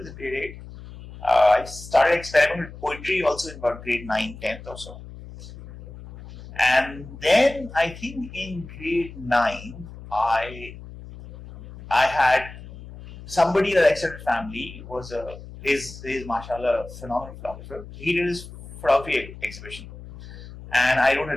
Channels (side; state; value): left; noise; hum, 15 dB below the sound